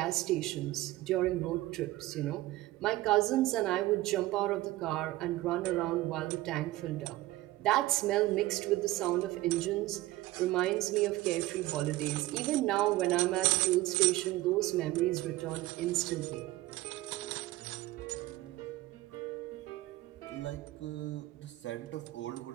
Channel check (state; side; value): quieter; left; 17.4 dB